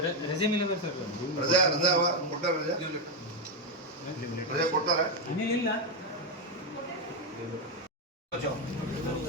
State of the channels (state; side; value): normal; both; correlation 0.05